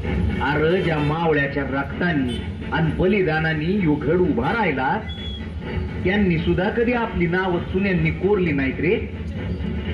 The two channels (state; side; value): identical; both; correlation 1.00